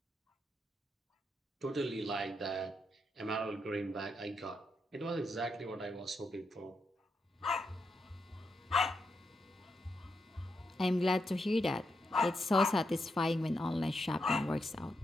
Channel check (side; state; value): both; normal; correlation 0.83